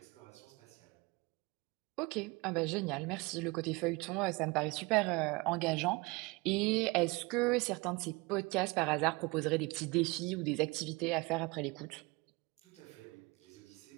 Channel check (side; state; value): left; quieter; 25.1 dB